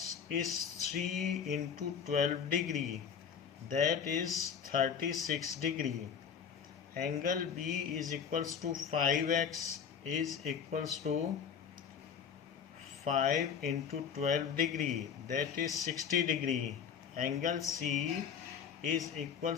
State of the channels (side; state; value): right; quieter; 7.3 dB